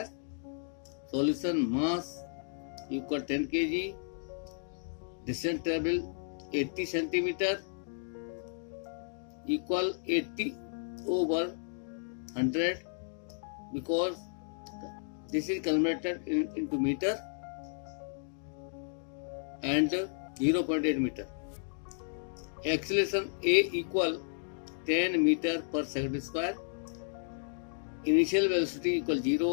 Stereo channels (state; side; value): silent; right; digital silence